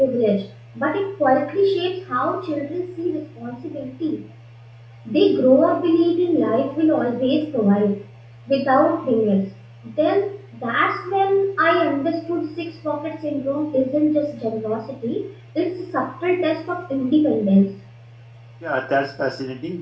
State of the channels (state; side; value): identical; both; correlation 1.00